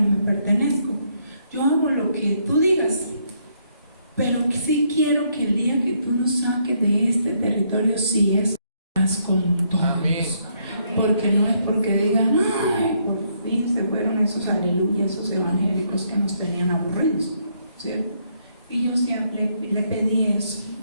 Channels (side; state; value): both; inverted; correlation -0.72